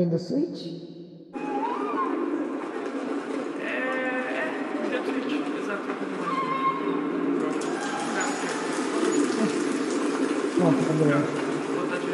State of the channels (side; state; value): both; identical; correlation 1.00